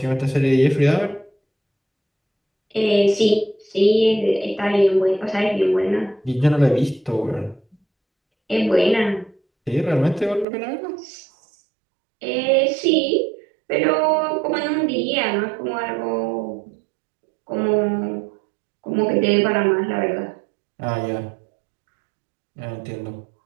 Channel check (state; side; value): drops out; left; at 10.5 s